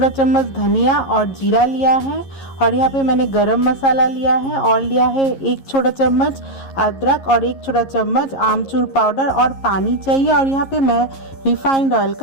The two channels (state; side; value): late; right; 11 ms